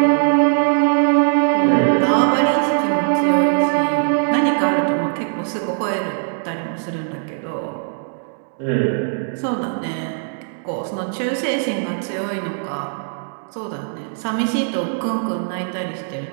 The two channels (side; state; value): left; silent; digital silence